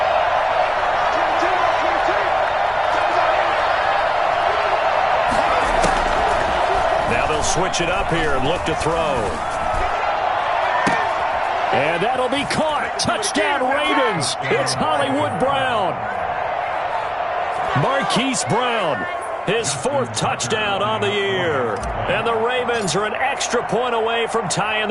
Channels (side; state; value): both; identical; correlation 1.00